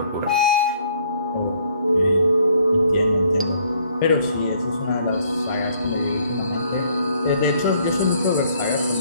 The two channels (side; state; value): both; inverted; correlation -0.64